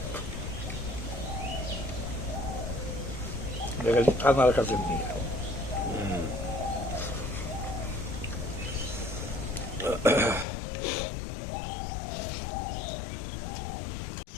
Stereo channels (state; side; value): drops out; right; at 10.5 s